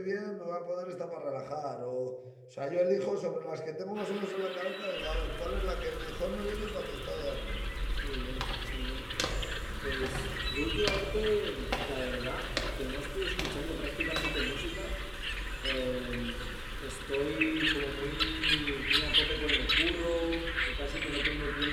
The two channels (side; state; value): both; identical; correlation 1.00